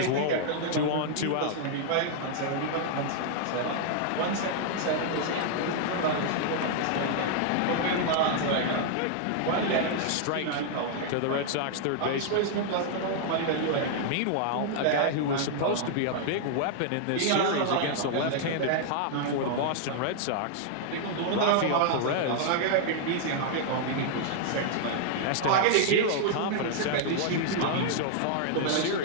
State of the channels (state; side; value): different; both; correlation 0.00